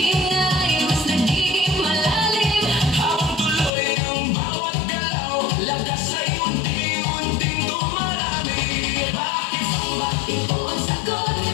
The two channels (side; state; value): right; drops out; at 3.7 s